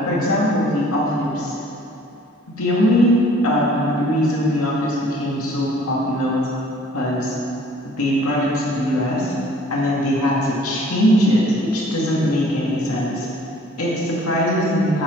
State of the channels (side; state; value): both; normal; correlation 0.54